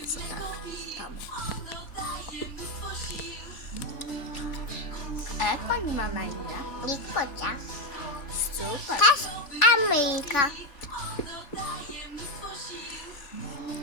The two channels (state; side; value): late; right; 3.5 ms